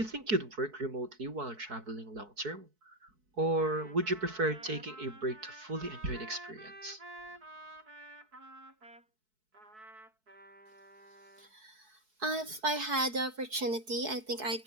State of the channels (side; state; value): left; late; 4.6 ms